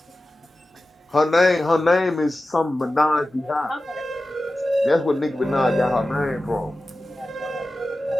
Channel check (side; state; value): both; normal; correlation 0.94